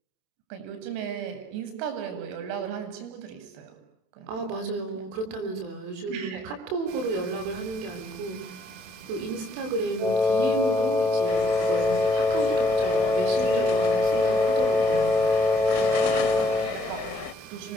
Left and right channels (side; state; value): left; late; 27 ms